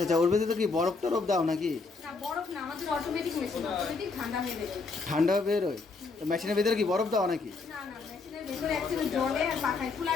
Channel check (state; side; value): quieter; right; 4.2 dB